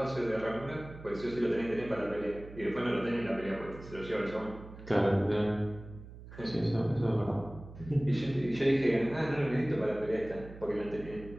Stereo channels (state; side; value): noise; right; hum, 15 dB below the sound